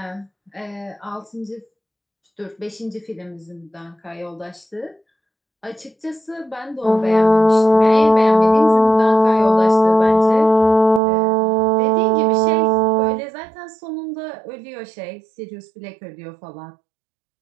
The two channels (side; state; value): left; drops out; at 11.0 s